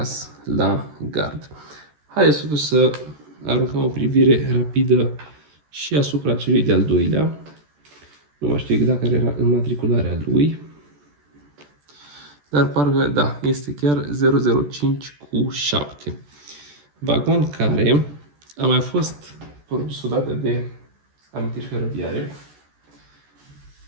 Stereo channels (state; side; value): late; left; 14 ms